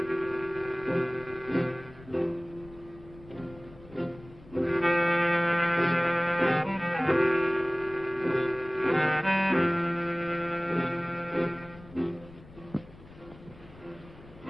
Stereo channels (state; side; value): noise; left; rumble, 21 dB below the sound